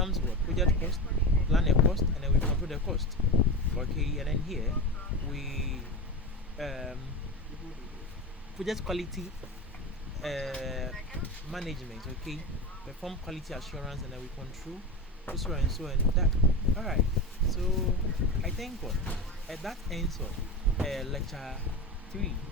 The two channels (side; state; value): both; normal; correlation 0.24